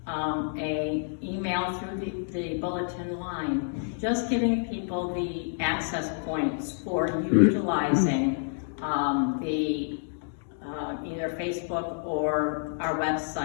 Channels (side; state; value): right; silent; digital silence